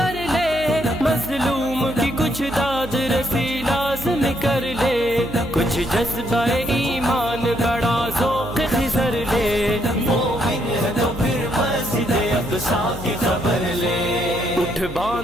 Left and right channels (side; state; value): right; noise; hum, 14 dB below the sound